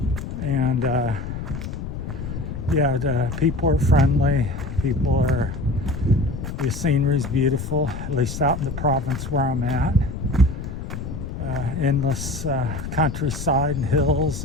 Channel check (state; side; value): noise; left; rumble, 7 dB below the sound